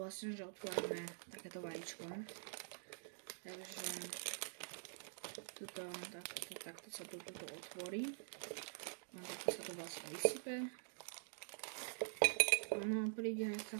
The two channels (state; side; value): silent; left; digital silence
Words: že otvárame takéto vajíčko. Takže takto sa to otvorí. No, takto sa to vlastne vysype. Ono príde aj s